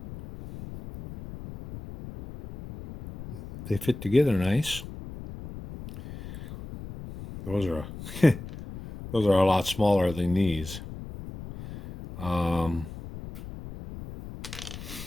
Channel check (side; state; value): left; noise; rumble, 12 dB below the sound